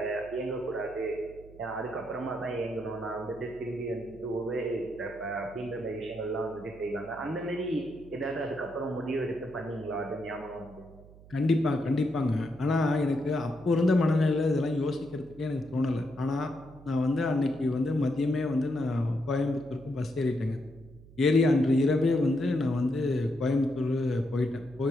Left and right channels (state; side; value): noise; right; hum, 21 dB below the sound